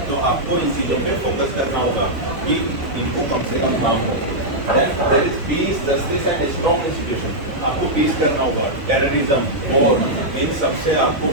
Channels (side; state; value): both; normal; correlation -0.07